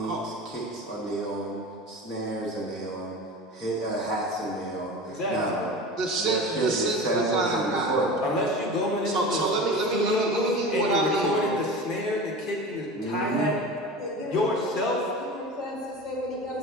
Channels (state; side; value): normal; both; correlation 0.32